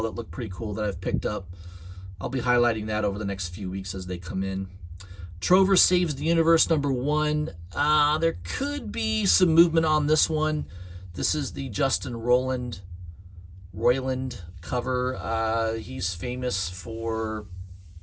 that look pretty cool that I've picked up. I'll be highlighting that over the next few weeks as they come in. Trover Saves the Universe #1. There could be some movement on this one. This is the Justin Roiland cover. He's famous for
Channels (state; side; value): identical; both; correlation 1.00